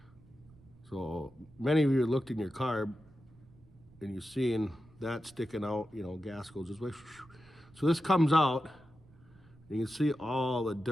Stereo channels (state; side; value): noise; right; rumble, 26 dB below the sound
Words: So many of you looked in your carb and you've seen that sticking out, you know, gas goes this way. So this comes out, and you can see all the